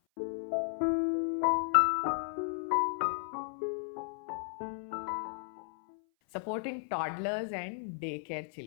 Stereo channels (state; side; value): silent; right; 55 dB below the other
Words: Supporting toddlers and daycare